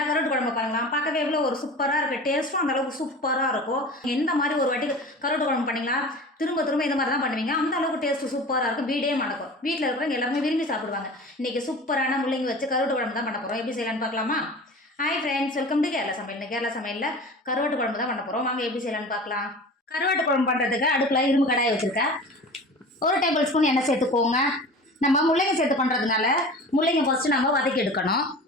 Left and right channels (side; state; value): both; normal; correlation 0.37